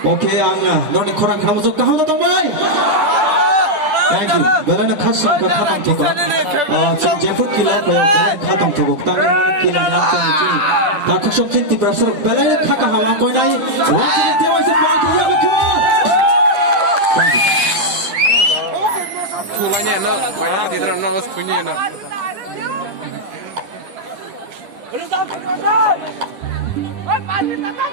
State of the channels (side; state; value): left; late; 9.7 ms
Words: Ok anh à, nó đi khóa khám giúp cao thế đồng vậy. Thank you. Vậy là khát sung khát tông thuộc. Trong giây phút kia phải khát tông thuộc. Tăng kia là khát tông chỉ. Ta khát sung tin tiper sơ. Vậy là khát cả hawa coi này. What is the voice of God? Kia được không? Thank you. Thu lại nhẹ nó, vậy là thì nó nó phun nhẹ nó.